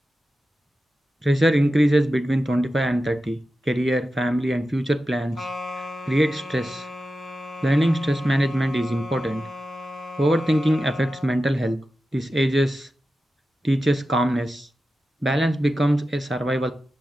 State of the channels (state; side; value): normal; both; correlation 0.92